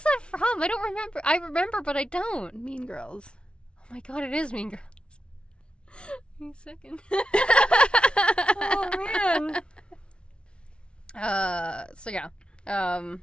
that from? I don't remember. I remember, but I don't. Mean Girls. Oh my god, it is Mean Girls. Wait a second. Oh man. So yeah.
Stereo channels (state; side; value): late; right; 0.057 ms